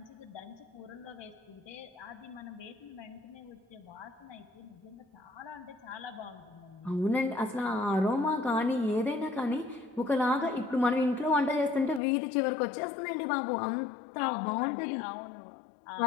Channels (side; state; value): right; drops out; at 12.0 s